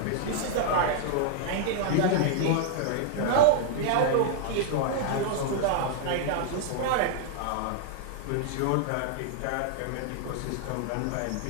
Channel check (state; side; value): different; both; correlation -0.01